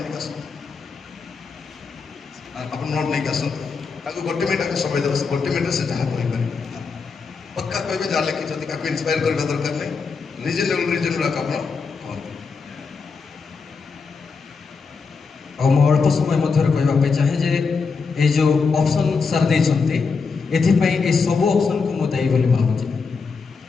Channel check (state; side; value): quieter; right; 5.0 dB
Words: ଟିକେ ଆସନ୍ତୁ ଆପଣ ନୋଟ୍ ନେଇକି ଆସନ୍ତୁ ତାକୁ ଗୋଟେ ମିନିଟ୍ ତାକୁ ସମୟ ଦେବ ଗୋଟେ ମିନିଟ୍ରେ ସେ ଯାହା କହିପାରିବେ ପକ୍କା କହିବେ ଯାହା ଲେଖିଛନ୍ତି ତାକୁ ଇନ୍ସପାୟାର କରିବା ଦରକାର ନାହିଁ ରିଜନେବଲ୍ ଆପଣ କୁହନ୍ତୁ। ଆଉ ମୁଁ ଅଳ୍ପ ସମୟ ମଧ୍ୟରେ କହିବା ପାଇଁ ଚାହେଁ ଯେ ଏଇ ଯେଉଁ ଅପସନ୍ ସାର୍ ଦେଇଛନ୍ତି ଏଥିପାଇଁ ଏ ସବୁ ଅପସନ୍କୁ ମୁଁ ଦାୟୀ ବୋଲି ଭାବୁଛି।